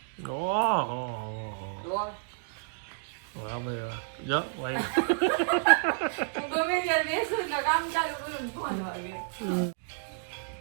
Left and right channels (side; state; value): left; silent; digital silence